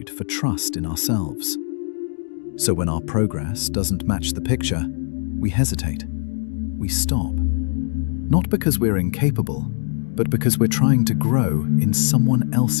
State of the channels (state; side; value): silent; right; digital silence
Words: for trust in ourselves. So when our progress doesn't match the picture, we hesitate. We stop. Not because we're incapable, but because we're trying to grow in someone